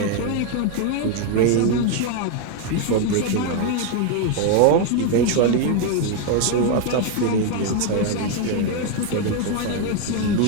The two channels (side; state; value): both; different; correlation 0.01